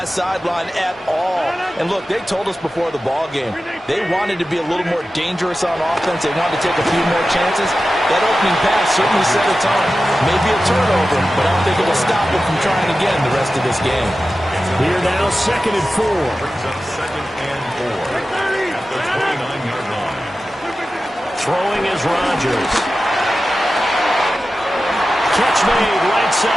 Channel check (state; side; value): normal; both; correlation 0.94